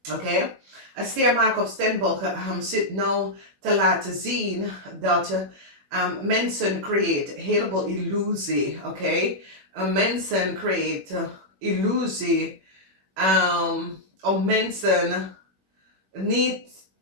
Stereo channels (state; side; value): late; left; 21 ms